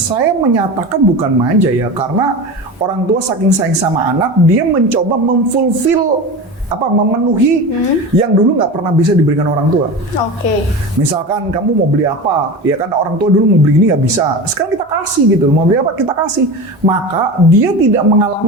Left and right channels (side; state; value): both; normal; correlation 0.28